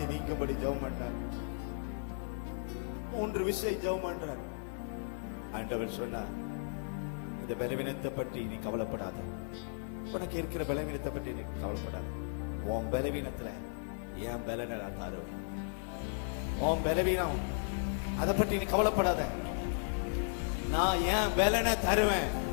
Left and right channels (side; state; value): right; silent; 54 dB below the other